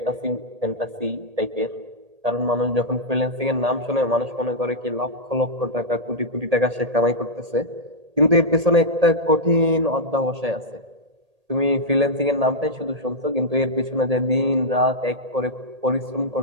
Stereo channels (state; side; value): late; left; 1.8 ms